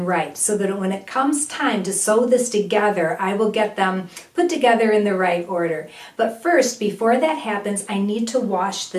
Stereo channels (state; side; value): identical; both; correlation 1.00